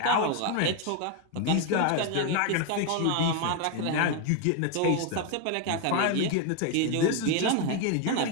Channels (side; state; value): both; different; correlation 0.01